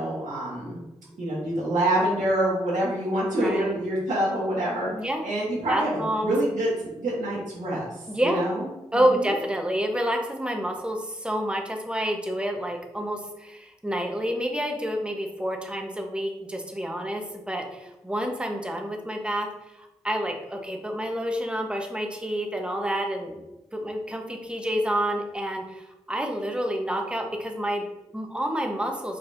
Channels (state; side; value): normal; both; correlation 0.78